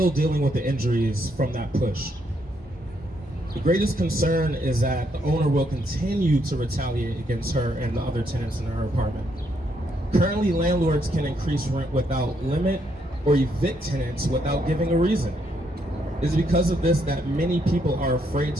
dealing with the injuries from that push. The greatest concern is that the owner will continue to retaliate against her and the other tenants in her apartment. Currently, landlords can increase rent without limit or evict tenants without giving a reason. It is because of this that many people are afraid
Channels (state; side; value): normal; both; correlation 0.75